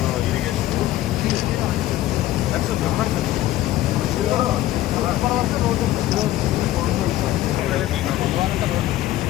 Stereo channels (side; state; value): right; quieter; 14.7 dB